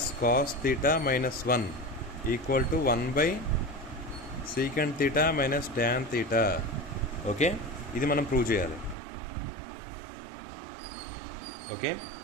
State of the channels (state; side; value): drops out; left; at 9.0 s